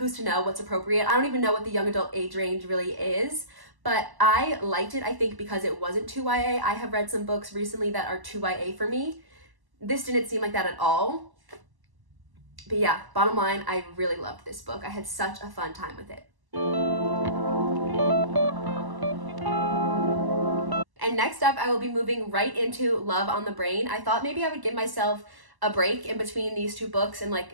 to know what's appropriate? I don't even know what the young adult age range really is. But I liked it, I think, because it wasn't too YA. I have read some books recently that are too YA for me. This didn't seem like that at all. But yeah, bottom line, I really loved this book. I had such a fun time with it. And next up, I will be moving right into Love on the Brain. I thought maybe I would give myself a break in between these two books and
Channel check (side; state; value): left; late; 1.0 ms